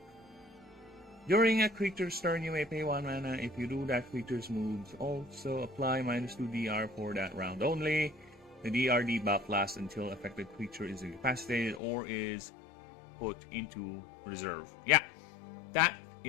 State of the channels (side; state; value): right; drops out; at 11.8 s